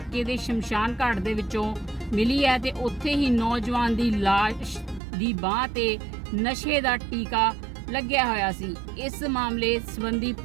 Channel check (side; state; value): left; drops out; at 5.0 s